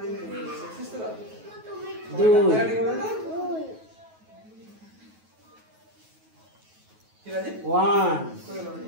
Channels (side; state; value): left; late; 9.3 ms